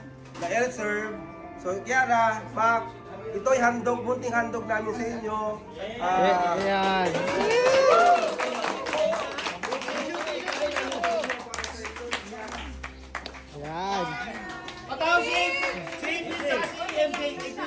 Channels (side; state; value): both; identical; correlation 1.00